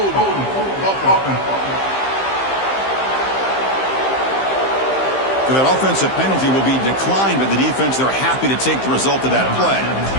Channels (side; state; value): right; late; 15 ms